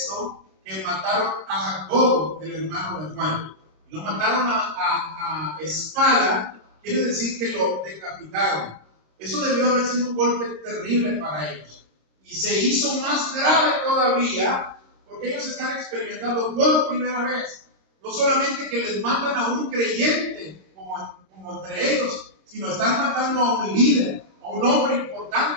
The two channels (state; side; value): late; left; 26 ms